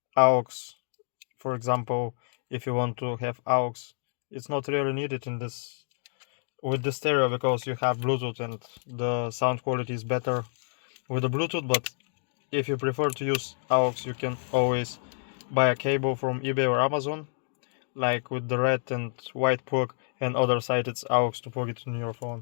aux. For example, if you want to have aux, it's not really needed in this with the stereo because you have Bluetooth and the sound quality is better with the Bluetooth. But if you prefer to use aux, you can always buy a cable from eBay or Amazon, like with the red and white plug, and other side it's aux to plug it in your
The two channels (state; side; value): silent; right; 59 dB below the other